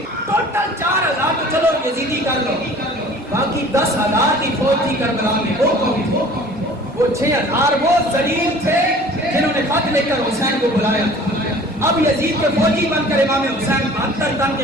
ٹوٹل 4,000 تو چلو یزیدی کر لو, باقی 10,000 کی فوج تھی کربلا میں. وہ کون تھے, وہ 6,000 وہ ذلیل تھے جنہوں نے خط لے کر حسین کو بلایا تھا. اب یزید کے فوجی بن کر امام حسین 72 تن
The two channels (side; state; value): both; normal; correlation 0.47